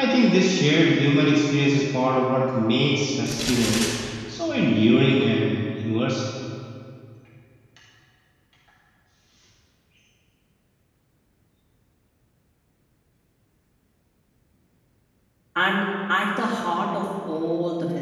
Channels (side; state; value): both; identical; correlation 1.00